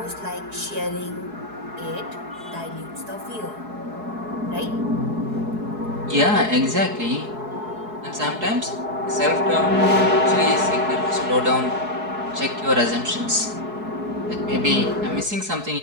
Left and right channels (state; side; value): late; left; 4.7 ms